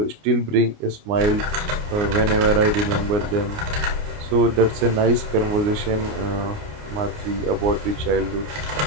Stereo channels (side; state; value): left; late; 29 ms